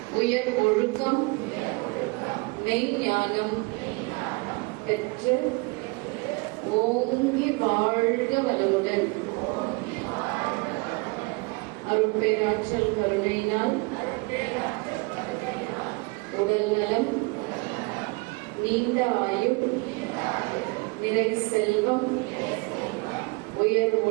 உயர் ஒழுக்கம், மெய்ஞானம் பெற்று ஓங்கி வாழ்க வளமுடன். அருட்பேராற்றல் கருணையினால் உடல் நலம், நீண்ட ஆயுள், நிறை செல்வம், உயர்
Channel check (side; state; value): left; quieter; 28.0 dB